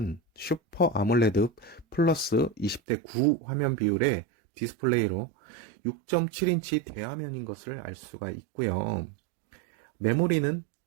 슈퍼 아몰레드 플러스 20대 9 화면 비율의 디스플레이로 6.7인치 대화면인 것을 알 수가 있고요. 메모리는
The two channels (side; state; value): left; drops out; at 2.8 s